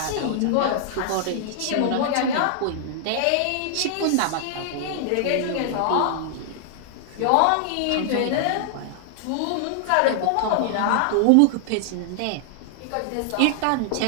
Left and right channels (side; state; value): both; different; correlation 0.00